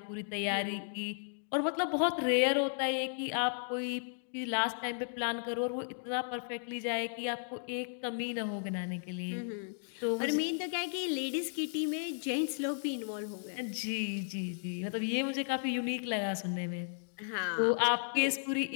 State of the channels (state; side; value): silent; right; digital silence